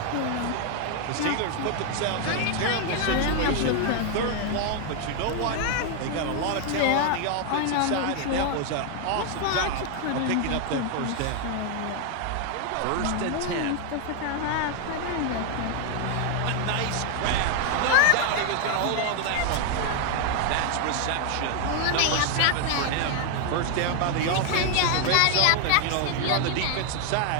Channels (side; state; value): both; different; correlation 0.00